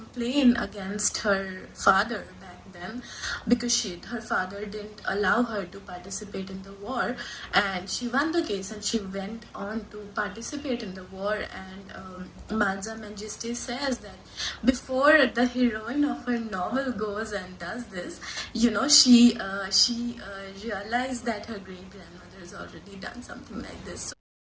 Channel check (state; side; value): identical; both; correlation 1.00